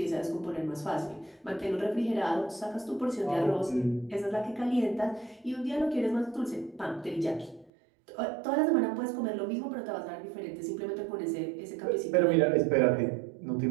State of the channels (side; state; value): left; drops out; at 7.7 s